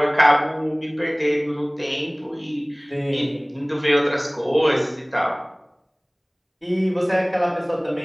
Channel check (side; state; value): both; identical; correlation 1.00